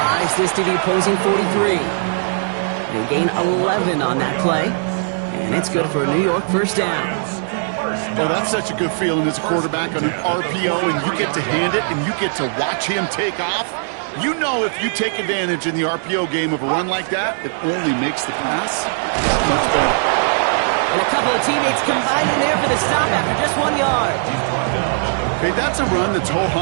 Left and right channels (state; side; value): silent; left; digital silence